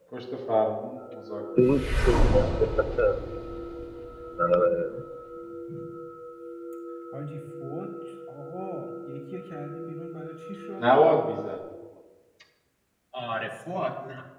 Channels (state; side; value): identical; both; correlation 1.00